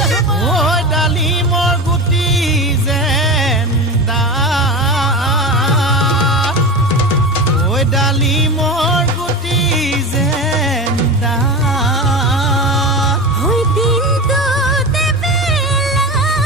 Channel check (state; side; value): normal; both; correlation 0.26